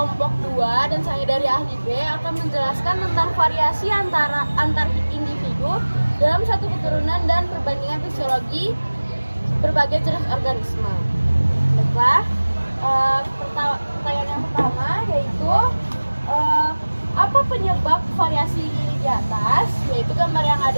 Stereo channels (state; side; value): inverted; both; correlation -1.00